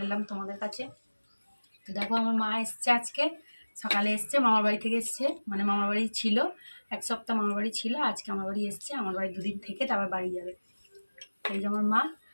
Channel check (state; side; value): inverted; both; correlation -1.00